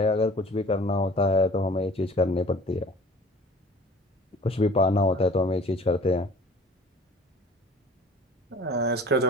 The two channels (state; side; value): normal; both; correlation 0.48